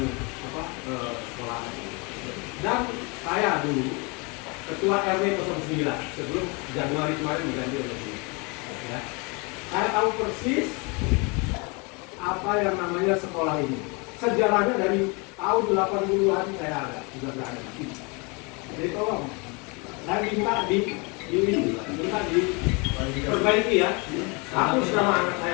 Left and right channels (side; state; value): right; quieter; 30.0 dB